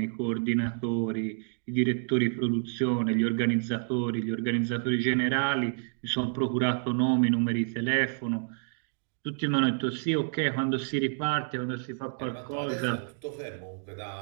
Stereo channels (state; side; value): silent; left; digital silence